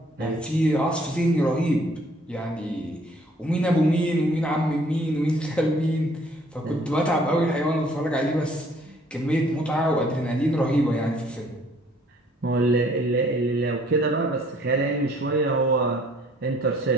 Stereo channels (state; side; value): normal; both; correlation 0.60